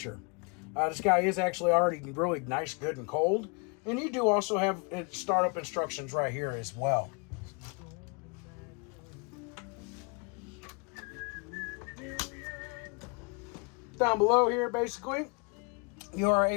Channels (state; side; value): quieter; right; 33.5 dB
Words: This guy is actually already really nice, good, and cold. And you do also have startup instructions right here as well. Down below here, basically, you are